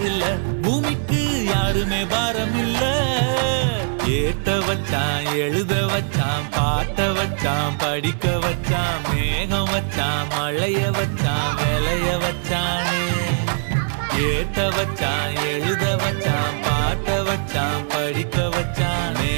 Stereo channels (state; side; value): silent; left; digital silence